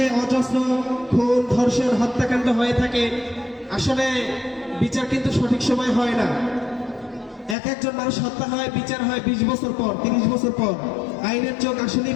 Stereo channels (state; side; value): drops out; right; at 7.6 s